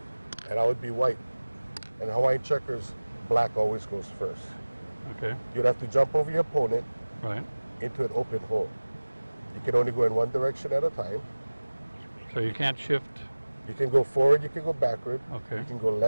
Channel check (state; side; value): inverted; both; correlation -1.00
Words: and I would be white. And Hawaiian checkers, black always goes first. Okay. You'd have to jump over your opponent Right. into an open hole. You can only go in one direction at a time. So you can't shift. You can go forward, you can go backward, Okay. you can go